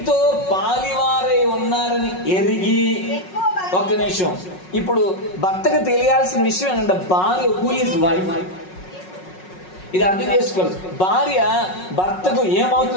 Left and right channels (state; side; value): late; right; 5.4 ms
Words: పాలివారై ఉన్నారని ఎరిగి. ఒక్క నిమిషం. ఇప్పుడు భర్తకు తెలియాల్సిన విషయం ఏంటంటే భార్య హూ ఈజ్ వైఫ్. ఇది అర్థం చేసుకోవాలి. భార్య భర్తకు